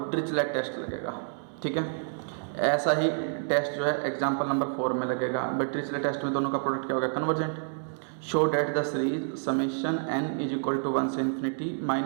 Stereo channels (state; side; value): silent; left; digital silence